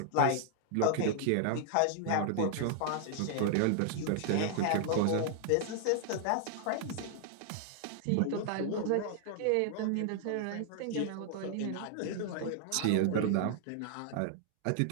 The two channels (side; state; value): both; different; correlation 0.00